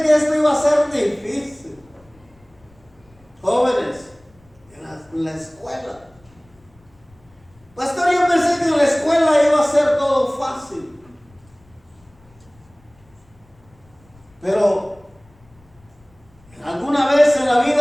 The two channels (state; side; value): noise; left; rumble, 30 dB below the sound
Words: que esto iba a ser difícil. Jóvenes, en la escuela. Pastor, yo pensé que en la escuela iba a ser todo fácil. Pero alguna vez en la